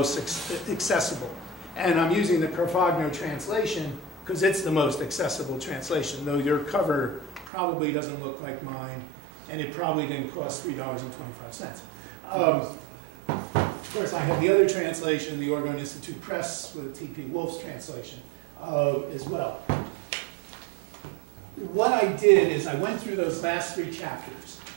accessible. And I'm using the Carfagno translation because it's the most accessible translation, though your cover probably doesn't look like mine, and it probably didn't cost $3.25. Of course, I have the other translation, the Oregon Institute Press with T.P. Wolf's translation as well. What I did is I went through those last 3 chapters,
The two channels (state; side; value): drops out; left; at 7.5 s